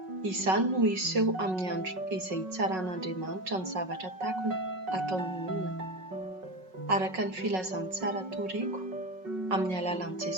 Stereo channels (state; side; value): late; left; 5.4 ms